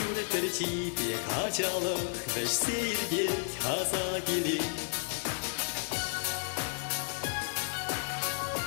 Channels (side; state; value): right; silent; digital silence